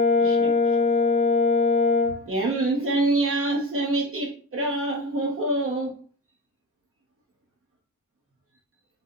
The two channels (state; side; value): normal; both; correlation 0.25